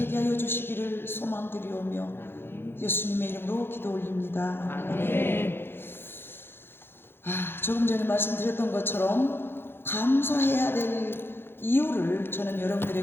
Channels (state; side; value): late; right; 0.11 ms